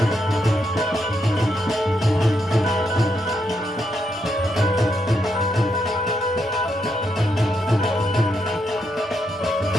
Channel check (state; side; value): normal; both; correlation 0.80